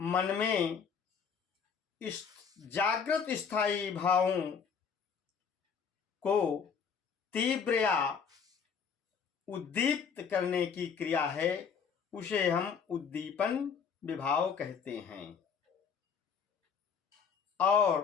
में इस जागृत स्थायी भावों को तीव्र या उद्दीप्त करने की क्रिया है, उसे हम उद्दीपन विभाव कहते हैं।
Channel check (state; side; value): quieter; right; 6.5 dB